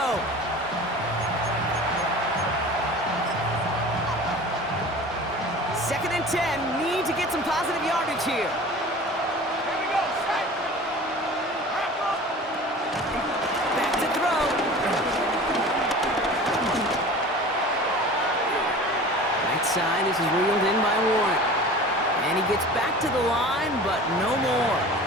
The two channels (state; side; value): normal; both; correlation 0.39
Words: Second and 10. Need to get some positive yardage here. Back to throw. Right side. This is reeled in by Warren. And he gets back to the line, but no more.